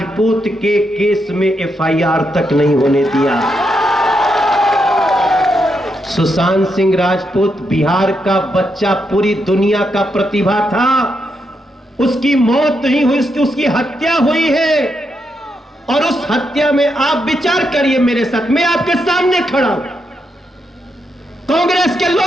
के केस में एफआईआर तक नहीं होने दिया। सुशांत सिंह राजपूत बिहार का बच्चा, पूरी दुनिया का प्रतिभा था। उसकी मौत नहीं हुई, उसकी हत्या हुई है। और उस हत्या में आप विचार करिए मेरे साथ, मैं आपके सामने खड़ा हूं, कांग्रेस के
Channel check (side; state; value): both; normal; correlation 0.82